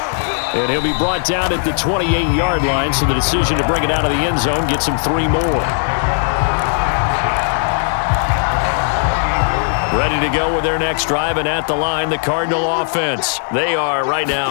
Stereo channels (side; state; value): right; silent; 59 dB below the other